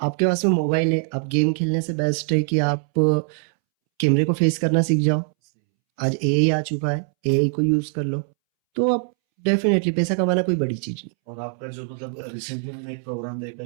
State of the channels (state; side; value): silent; left; 64 dB below the other